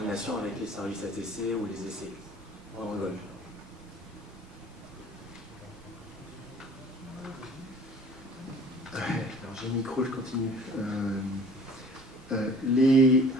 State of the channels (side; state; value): both; normal; correlation 0.48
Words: avec les services ATC ou les essais pendant le vol. Alors j'ai le micro, je continue.